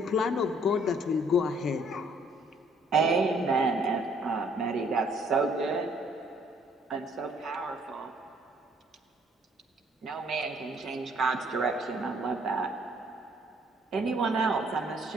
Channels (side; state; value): both; normal; correlation 0.63